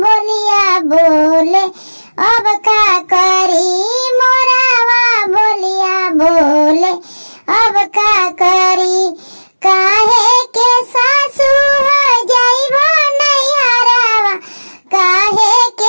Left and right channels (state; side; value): inverted; both; correlation -1.00